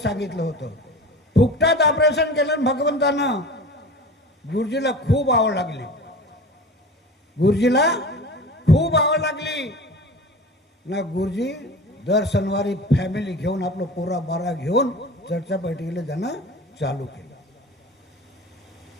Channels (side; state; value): both; normal; correlation 0.36